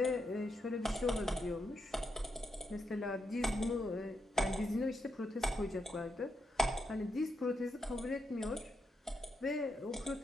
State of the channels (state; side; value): normal; both; correlation 0.83